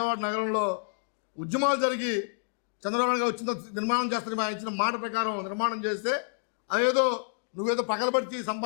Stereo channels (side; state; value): right; silent; digital silence